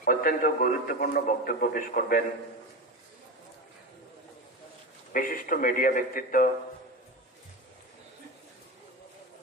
অত্যন্ত গুরুত্বপূর্ণ বক্তব্য পেশ করবেন বিশিষ্ট মিডিয়া ব্যক্তিত্ব,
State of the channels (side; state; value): both; normal; correlation 0.22